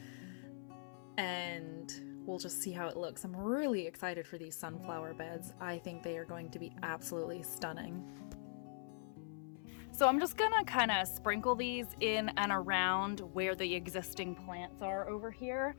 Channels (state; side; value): silent; right; 50 dB below the other